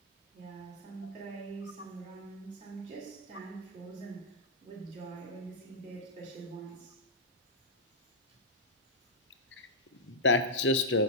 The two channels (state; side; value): normal; both; correlation -0.09